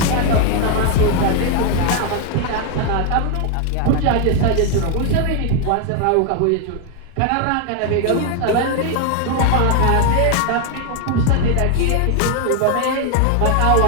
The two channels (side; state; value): both; different; correlation 0.00